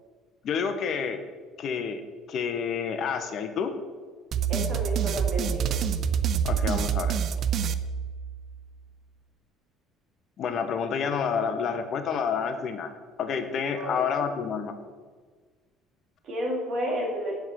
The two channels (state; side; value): normal; both; correlation 0.50